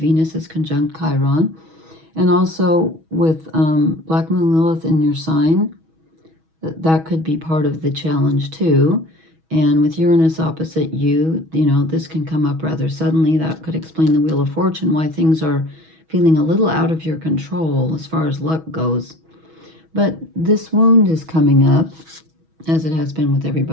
is conjunct Chiron, and also with Black Moon Lilith in your sign. That could be part of the challenge too. And with Uranus opposite you, you know, this can come up rather suddenly. That could explain the Wheel of Fortune, why things are feeling a little out of your control as far as luck goes. But this wound is coming up, as it has been with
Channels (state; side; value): late; left; 6.2 ms